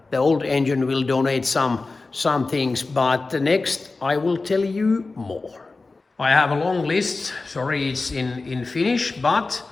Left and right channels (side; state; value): right; quieter; 3.7 dB